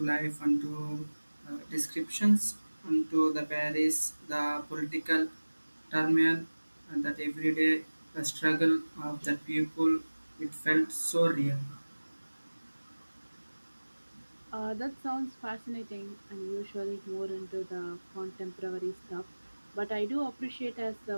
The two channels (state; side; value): inverted; both; correlation -1.00